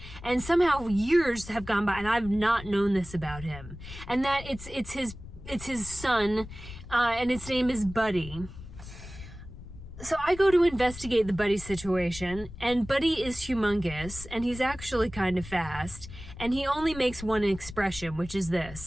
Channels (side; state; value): left; noise; rumble, 14 dB below the sound